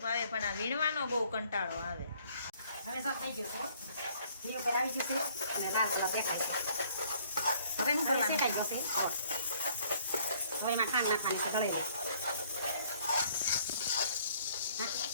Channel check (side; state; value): both; inverted; correlation -0.61